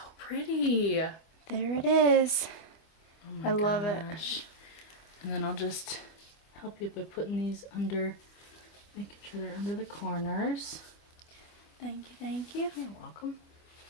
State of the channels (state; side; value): late; right; 24 ms